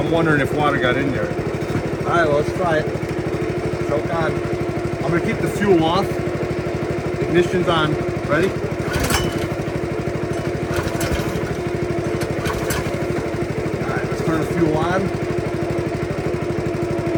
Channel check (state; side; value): identical; both; correlation 1.00